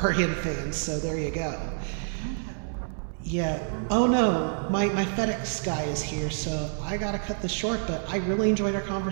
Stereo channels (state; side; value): silent; left; digital silence